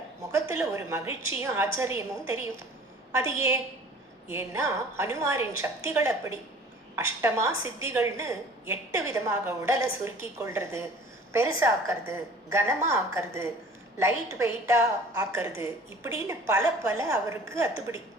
முகத்துல ஒரு மகிழ்ச்சியும் ஆச்சரியமும் தெரியும். அது ஏன்னா ஹனுமாரின் சக்திகள் அப்படி. அஷ்டமா சித்திகள்னு 8 விதமாக உடலை சுருக்கி கொள்றது, பெருசாக்கிறது, கனமா ஆக்கிறது, லைட் வெயிட்டா ஆக்கிறது, இப்படின்னு பல அவருக்கு அத்துப்படி.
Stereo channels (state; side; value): normal; both; correlation 0.47